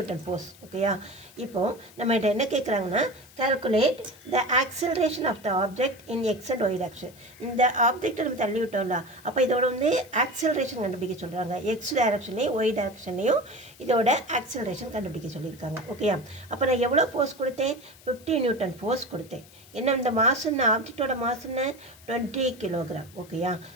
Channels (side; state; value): left; noise; hiss, 23 dB below the sound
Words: ஃபோர்ஸ். ஓகேயா, இப்போது நம்மகிட்ட என்ன கேட்குறாங்கன்னா, calculate the acceleration of the object in X and Y direction. இந்த ஆப்ஜெக்டை நம்ம தள்ளி விட்டோம்ல, அப்போ இதோட வந்து ஆக்சலரேஷன் கண்டுபிடிக்க சொல்கிறாங்க. எக்ஸ் டைரக்ஷன்லையும் ஒய் டைரக்ஷன்லையும் இதோட ஆக்சலரேஷன் கண்டுபிடிக்க சொல்லியிருக்காங்க. ஓகேயா, அப்போ நான் எவ்வளோ ஃபோர்ஸ் கொடுத்தேன்? 50 நியூட்டன் ஃபோர்ஸ் கொடுத்தேன். என்ன இந்த மாசுன்னு ஆப்ஜெக்டோட மாசுன்னு 20 கிலோகிராம். ஓகேயா,